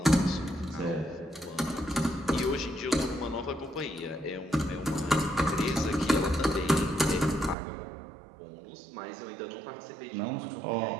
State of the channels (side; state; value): left; drops out; at 7.6 s